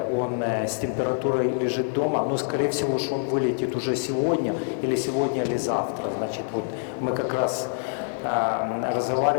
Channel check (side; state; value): right; silent; digital silence